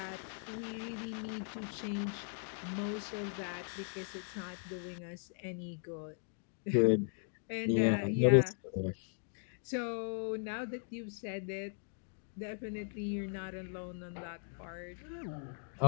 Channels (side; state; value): right; silent; 52 dB below the other